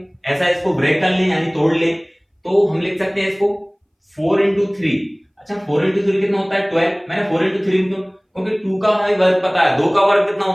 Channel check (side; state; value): both; identical; correlation 1.00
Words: ऐसा इसको ब्रेक कर लें यानी तोड़ लें, तो हम लिख सकते हैं इसको 4 इंटू 3। अच्छा 4 इंटू 3 कितना होता है 12, मैंने 4 इंटू 3 क्योंकि 2 का हमें वर्ग पता है, 2 का वर्ग कितना